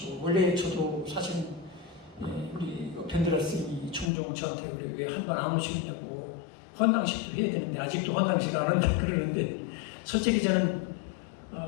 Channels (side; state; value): right; drops out; at 4.1 s